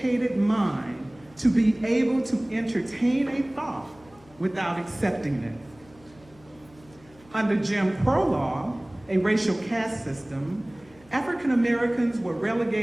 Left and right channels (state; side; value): noise; left; hum, 27 dB below the sound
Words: mind to be able to entertain a thought without accepting it." Under Jim Crow law, a racial caste system, African Americans were